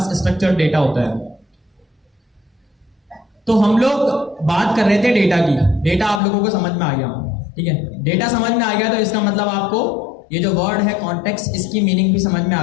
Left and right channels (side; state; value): right; drops out; at 6.2 s